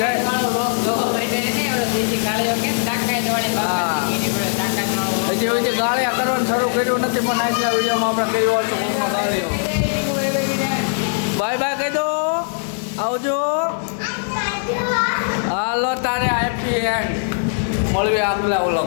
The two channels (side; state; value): right; silent; digital silence